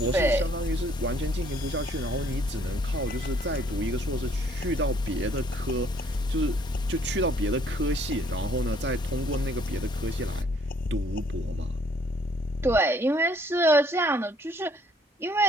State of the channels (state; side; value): normal; both; correlation 0.63